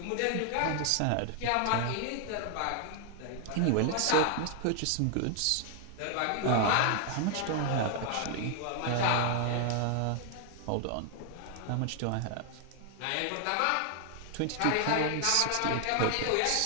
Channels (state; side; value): different; both; correlation 0.00